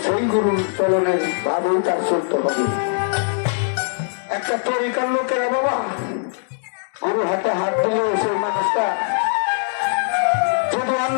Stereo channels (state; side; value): silent; right; digital silence